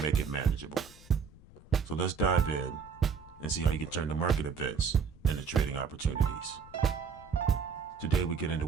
make it manageable. So let's dive in and see how you can turn the market events into trading opportunities. Today we get into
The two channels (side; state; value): left; quieter; 6.2 dB